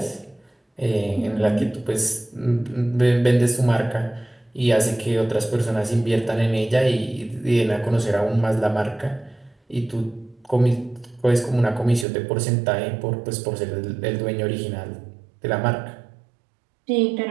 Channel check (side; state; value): left; drops out; at 12.1 s